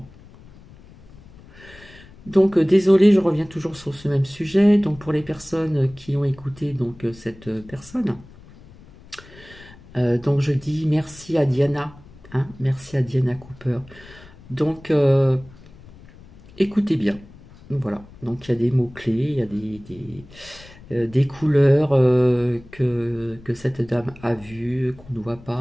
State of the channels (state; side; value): noise; left; rumble, 22 dB below the sound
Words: Donc désolé, je reviens toujours sur ce même sujet. Donc pour les personnes qui ont écouté cette personne, donc je dis merci à Diana, hein, merci à Diana Cooper. Donc écoutez bien. Voilà, donc il y a des mots-clés, il y a des couleurs que cette dame a vues, qu'on ne voit